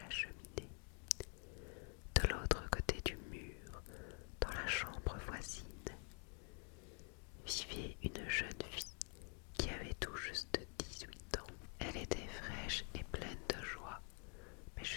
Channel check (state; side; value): quieter; right; 39.4 dB